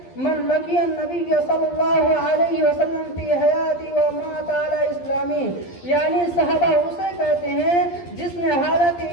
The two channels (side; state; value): right; late; 12 ms